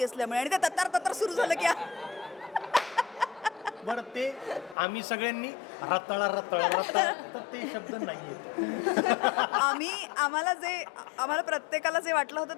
असल्यामुळे, आणि ते तत्तर सुरू झालं की बरं, ते आम्ही सगळ्यांनी रताळा ते शब्द नाहीये. आम्हाला प्रत्येकाला जे वाटलं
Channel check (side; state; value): right; drops out; at 4.8 s